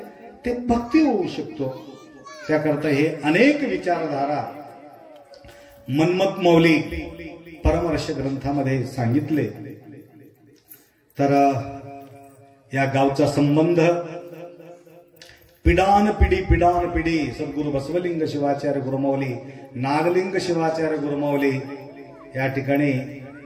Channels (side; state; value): both; identical; correlation 1.00